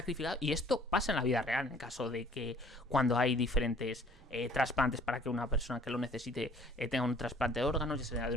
Y esto pasa en la vida real, en caso de que cuando hay diferentes trasplantes para que una persona que lo necesite tenga un trasplante de órganos, ya sea de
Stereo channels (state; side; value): normal; both; correlation 0.55